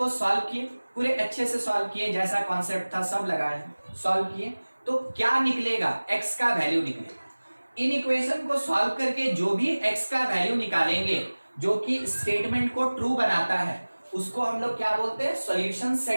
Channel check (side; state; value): both; inverted; correlation -1.00